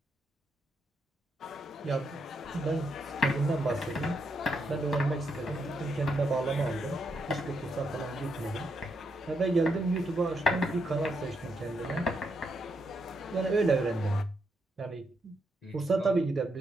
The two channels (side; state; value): both; normal; correlation 0.79